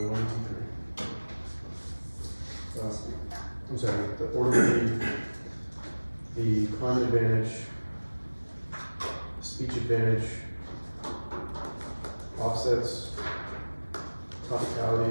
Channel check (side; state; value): both; inverted; correlation -1.00